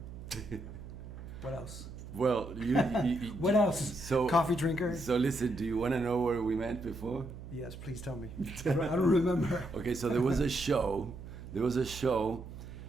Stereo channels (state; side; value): noise; right; hum, 12 dB below the sound